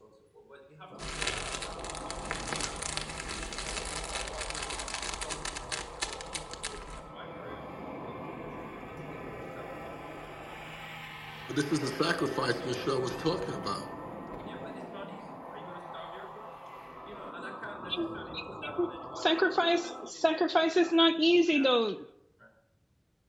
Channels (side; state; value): both; identical; correlation 1.00